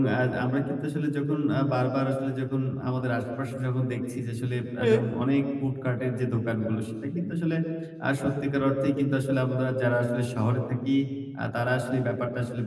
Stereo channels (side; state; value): both; identical; correlation 1.00